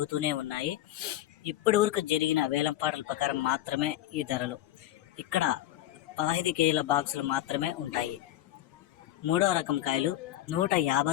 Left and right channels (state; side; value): quieter; right; 13.7 dB